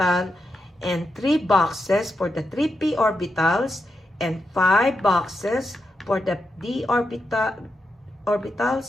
and 3 boxes for the 3 p orbitals and 5 boxes for the d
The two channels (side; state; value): both; normal; correlation 0.86